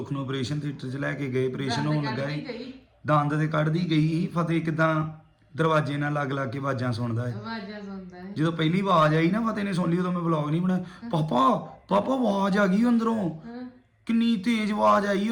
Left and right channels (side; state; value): both; identical; correlation 1.00